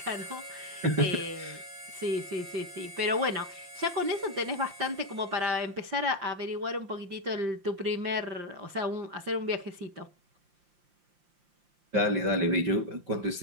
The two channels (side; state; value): left; late; 5.7 ms